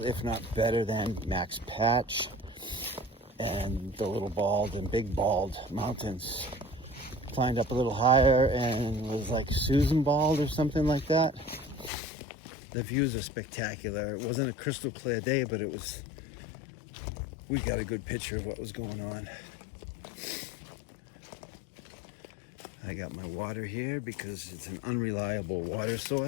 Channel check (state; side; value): drops out; right; at 11.9 s